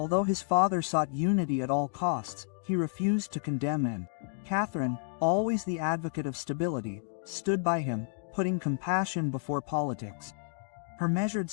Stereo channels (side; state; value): right; silent; digital silence